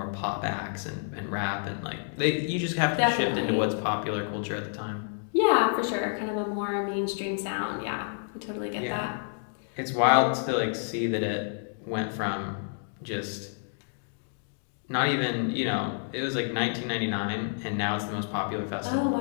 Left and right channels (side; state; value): right; silent; digital silence